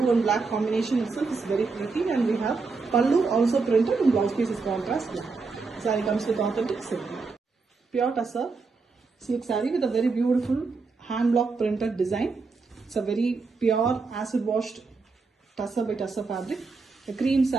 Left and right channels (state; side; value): quieter; left; 4.3 dB